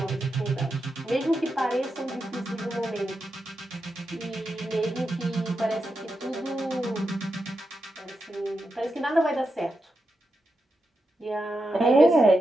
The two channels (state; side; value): normal; both; correlation 0.87